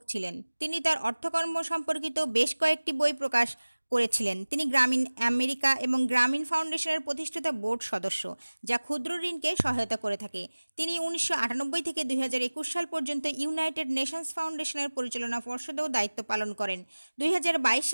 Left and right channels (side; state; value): both; inverted; correlation -1.00